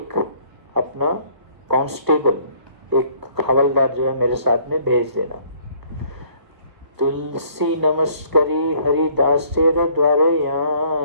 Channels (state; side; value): late; left; 1.5 ms